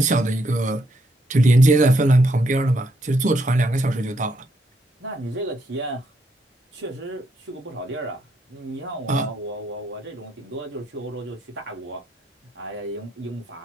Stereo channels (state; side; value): normal; both; correlation 0.76